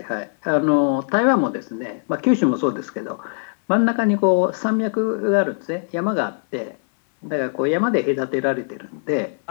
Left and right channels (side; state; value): right; silent; 60 dB below the other